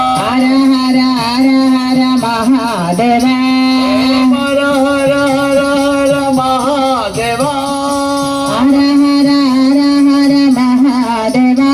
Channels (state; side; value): identical; both; correlation 1.00